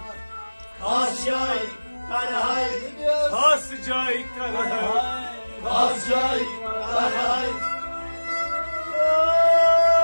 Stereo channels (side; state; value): both; inverted; correlation -1.00